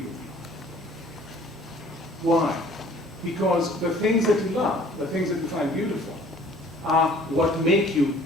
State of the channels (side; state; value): both; normal; correlation 0.54